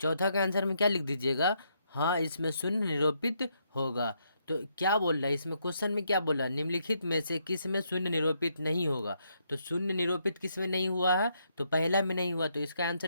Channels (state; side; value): inverted; both; correlation -0.76